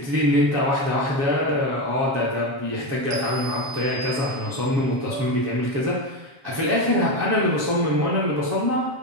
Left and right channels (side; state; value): left; late; 7.4 ms